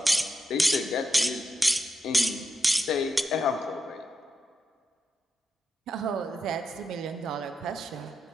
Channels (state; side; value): normal; both; correlation 0.86